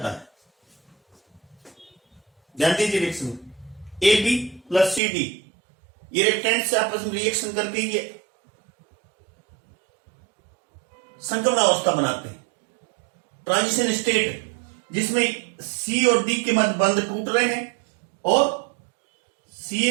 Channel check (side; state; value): left; drops out; at 5.0 s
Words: है। ध्यान दीजिए reaction, A B plus C D, ये रिएक्टेंट से आपस में रिएक्शन करके ये संक्रमण अवस्था बनाते हैं। ट्रांजिशन स्टेट जिसमें सी और डी के मध्य बंध टूट रहे हैं और सी